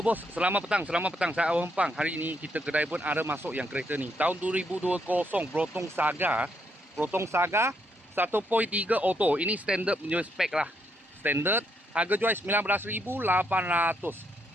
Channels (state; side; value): normal; both; correlation 0.76